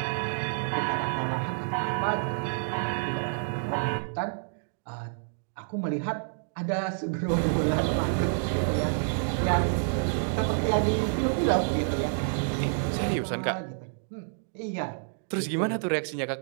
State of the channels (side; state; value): left; silent; digital silence